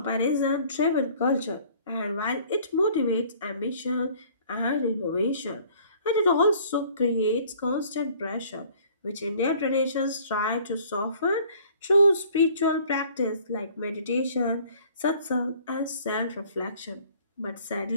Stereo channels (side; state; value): both; inverted; correlation -0.55